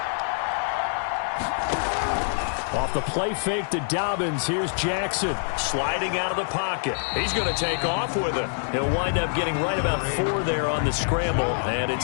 Off the play fake to Dobbins. Here's Jackson sliding out of the pocket. He's going to take off with it. He'll wind up getting right about 4 there on the scramble, and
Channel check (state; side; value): silent; right; 61 dB below the other